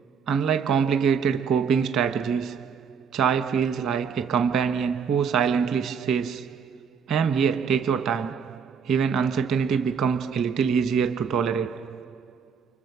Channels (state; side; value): quieter; left; 6.6 dB